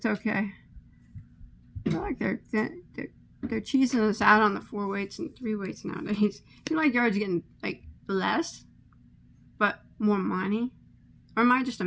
okay. I feel like they're cheesing us out on the 4-weights and 3-weights nowadays. I feel like yards getting like less, but more money. Or am I just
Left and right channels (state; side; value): identical; both; correlation 1.00